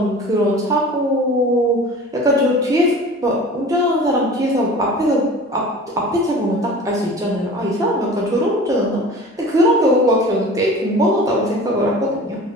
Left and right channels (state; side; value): normal; both; correlation 0.40